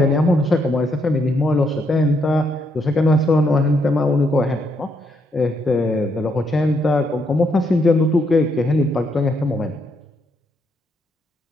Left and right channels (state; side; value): normal; both; correlation 0.76